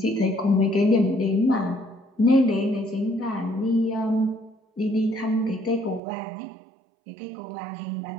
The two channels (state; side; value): drops out; left; at 6.0 s